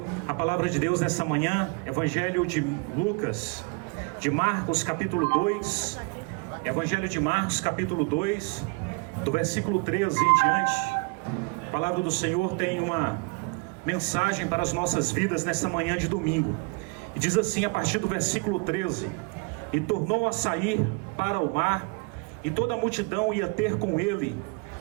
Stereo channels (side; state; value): left; quieter; 31.5 dB